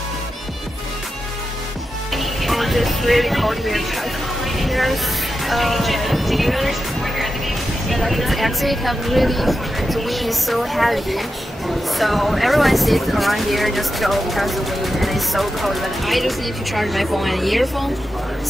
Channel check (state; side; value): normal; both; correlation 0.90